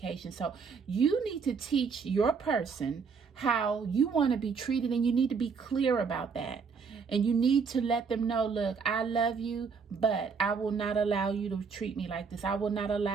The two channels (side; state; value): left; quieter; 5.5 dB